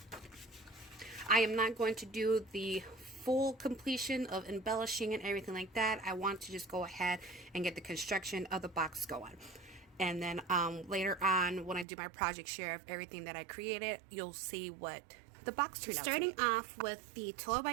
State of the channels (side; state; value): left; drops out; at 11.9 s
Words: I am not going to do the full completion of embellishing and everything like that. I want to just go ahead and get the construction of the box going. And then later on, when I do my project share of everything that I created, you'll see what the box turned out. Starting off with the 12